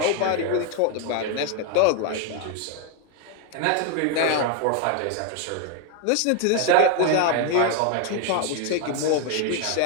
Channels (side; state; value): both; different; correlation 0.01